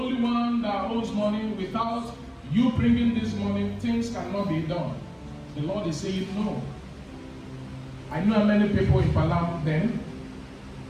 one that owes money. Without you bringing this money, things cannot be done. The Lord is saying no. I know many people in Palam then,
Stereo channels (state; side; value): identical; both; correlation 1.00